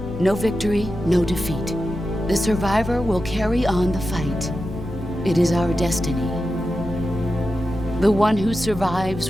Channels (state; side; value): normal; both; correlation 0.91